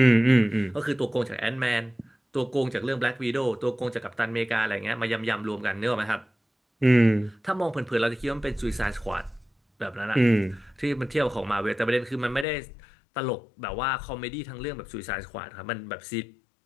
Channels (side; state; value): right; drops out; at 12.5 s